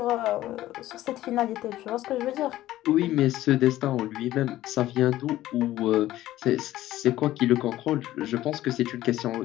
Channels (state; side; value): quieter; right; 14.8 dB